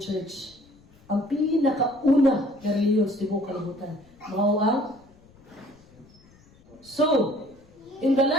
church. Ang pinakauna na religious di mo kalimutan. Mao ang So, in the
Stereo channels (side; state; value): left; noise; rumble, 28 dB below the sound